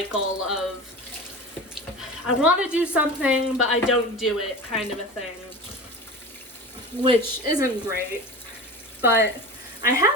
of I want to do something, but I don't do it kind of a thing, which isn't great. But I have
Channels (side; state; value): both; normal; correlation 0.33